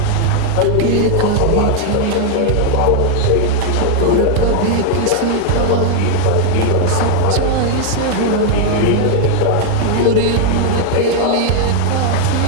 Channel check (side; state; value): both; different; correlation 0.00